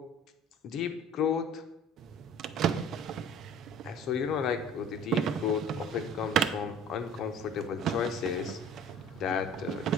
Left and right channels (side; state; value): both; normal; correlation 0.46